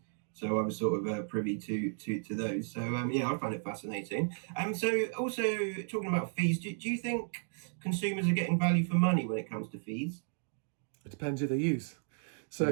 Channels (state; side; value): silent; left; 55 dB below the other